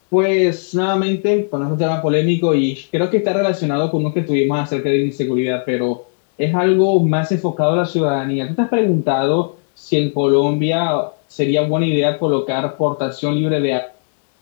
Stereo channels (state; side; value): silent; right; digital silence